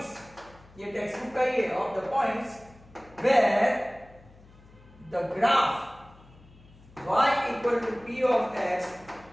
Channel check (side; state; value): left; noise; hum, 24 dB below the sound